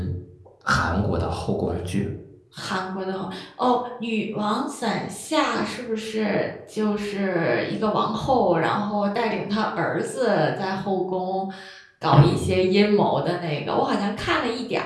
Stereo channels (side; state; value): both; identical; correlation 1.00